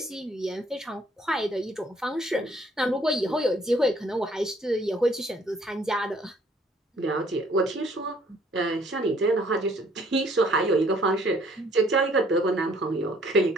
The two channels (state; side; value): normal; both; correlation 0.61